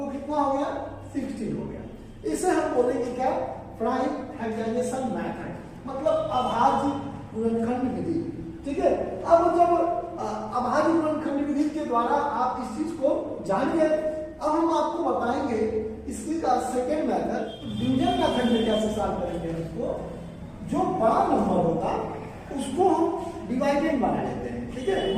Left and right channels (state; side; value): identical; both; correlation 1.00